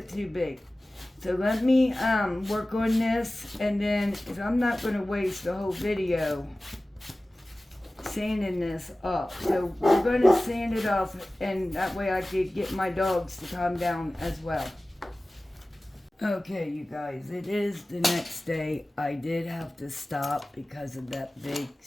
too big. So let me work on this, and then, because I'm not going to waste the whole video sanding this off. So we're going to sand it off, and that way I could get my dogs to calm down as well. Okay, you guys, it is the next day. I did have to stop because of that big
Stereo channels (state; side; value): normal; both; correlation 0.97